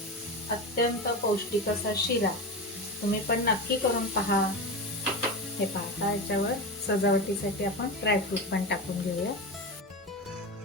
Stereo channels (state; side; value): normal; both; correlation 0.21